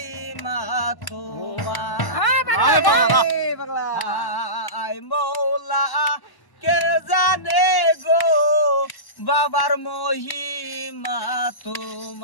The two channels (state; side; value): late; right; 1.1 ms